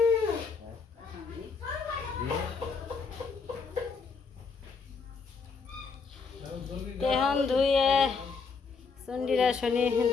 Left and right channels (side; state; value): right; quieter; 5.0 dB